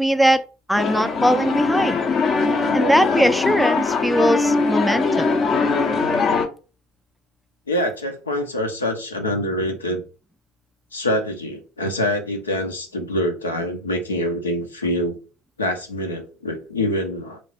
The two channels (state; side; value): normal; both; correlation 0.60